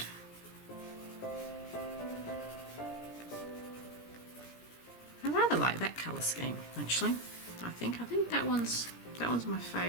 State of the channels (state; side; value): late; right; 17 ms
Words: colour scheme actually. I think that one's my